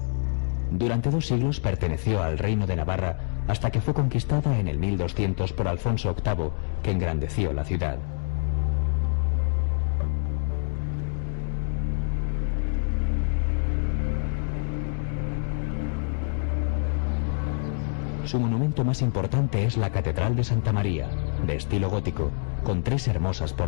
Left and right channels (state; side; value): silent; right; 61 dB below the other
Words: Durante 2 siglos perteneció al reino de Navarra hasta que fue conquistada en el 1200 por Alfonso VIII, que engrandeció la ciudad. Su monumento más importante es la Catedral de Santa María, de estilo gótico, con 3 hermosas